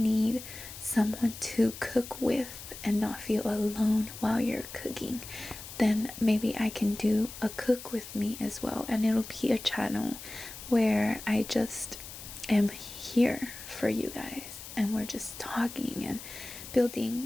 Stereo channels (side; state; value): left; noise; hiss, 13 dB below the sound